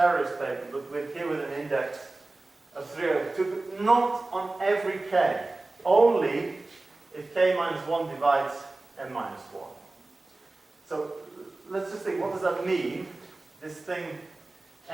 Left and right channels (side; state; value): left; quieter; 3.1 dB